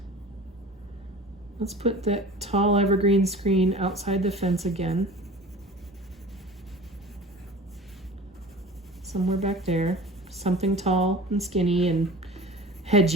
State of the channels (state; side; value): normal; both; correlation 0.39